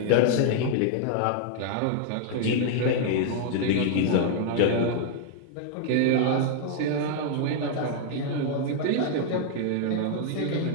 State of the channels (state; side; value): different; both; correlation 0.00